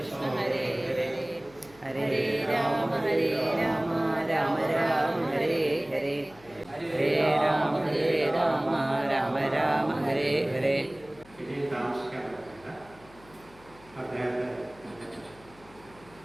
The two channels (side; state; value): left; noise; hum, 25 dB below the sound